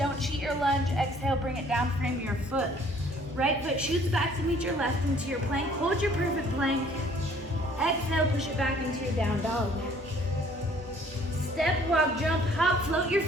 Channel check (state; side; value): normal; both; correlation 0.58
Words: cheat your lunge. Exhale, bring it down, frame your foot. Right foot shoots back to meet your left into your plank. Hold your perfect plank. Exhale, push it back into your down dog. Step, walk, jump, hop, float your